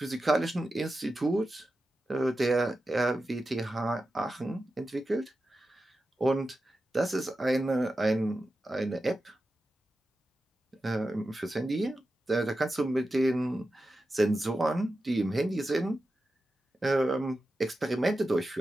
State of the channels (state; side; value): normal; both; correlation 0.92